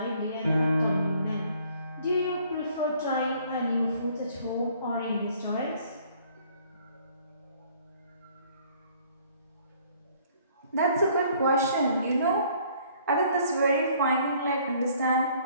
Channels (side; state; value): both; inverted; correlation -0.59